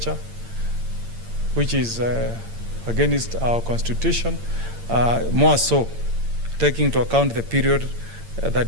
which is against our Constitution, more so taking into account the period that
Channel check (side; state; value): left; late; 8.8 ms